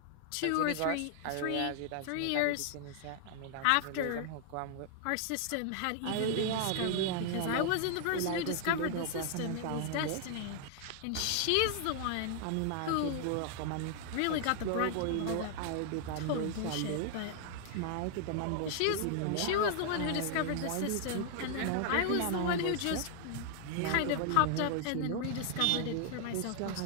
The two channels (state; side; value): different; both; correlation 0.00